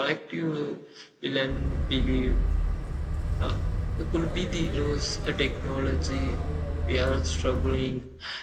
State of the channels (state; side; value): identical; both; correlation 1.00